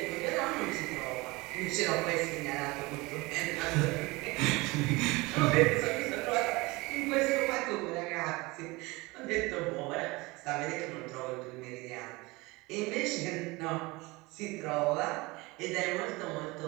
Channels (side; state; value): left; quieter; 23.2 dB